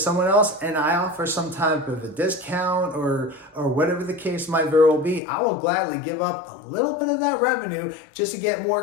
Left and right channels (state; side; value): drops out; right; at 5.2 s